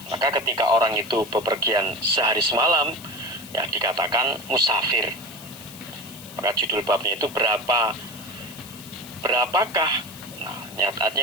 Maka ketika orang itu bepergian sehari semalam, ya dikatakan musafir. Maka judul babnya itu berapakah? Nah,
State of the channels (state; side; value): noise; left; hiss, 16 dB below the sound